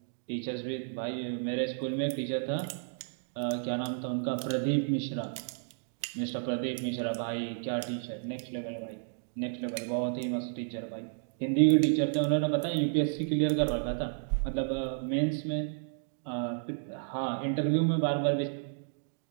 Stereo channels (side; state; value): left; silent; digital silence